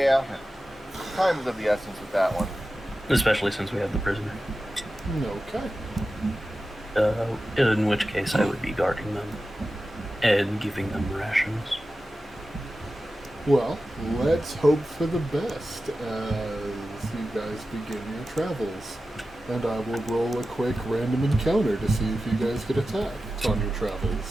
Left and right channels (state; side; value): normal; both; correlation 0.94